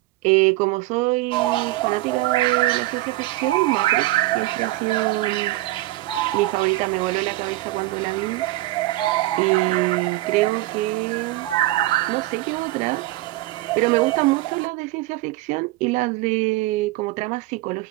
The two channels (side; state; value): left; quieter; 18.3 dB